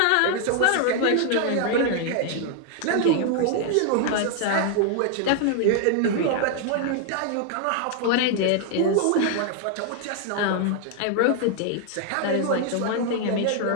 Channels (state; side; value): different; both; correlation 0.00